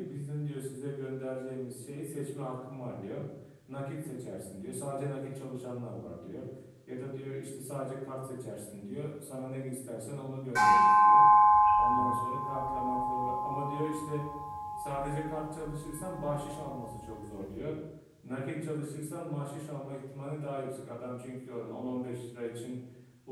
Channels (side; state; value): both; identical; correlation 1.00